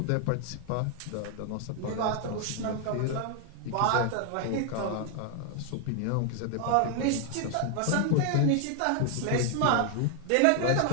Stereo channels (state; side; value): different; both; correlation 0.00